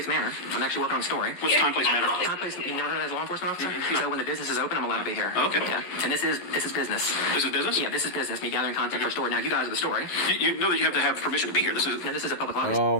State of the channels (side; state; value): right; late; 11 ms